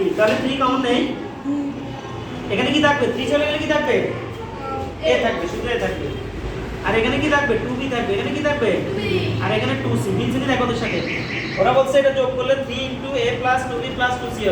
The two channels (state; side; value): identical; both; correlation 1.00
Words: তাহলে 3 কমন নেই এখানে কি থাকবে 3 চলে গেলে কি থাকবে a থাকবে শুধু a থাকবে আর এখানে কি থাকবে 2b থাকবে এখানে কি থাকবে আর এখানে 2c মিলছে কি দেখো ওদের সাথে ওরা বলছে এটা যোগ করলে 3 a 2b 2c